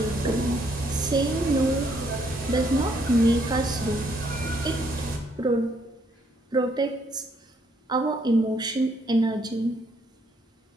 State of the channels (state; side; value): normal; both; correlation 0.70